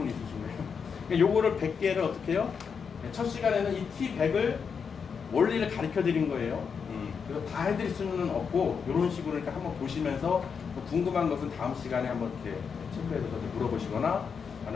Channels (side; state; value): right; quieter; 6.2 dB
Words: 있으신가요? 요거를 100개를 어떻게 해요? 첫 시간에는 이 T100을 원리를 가르쳐 드린 거예요. 그래서 다 해드릴 수는 없고 이런 식으로 그러니까 한번 보시면서 궁금한 것은 다음 시간에 한번 이렇게 체크해서 물어보시거나